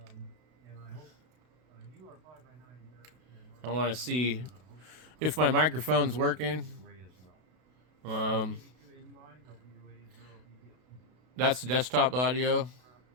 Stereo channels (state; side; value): late; left; 32 ms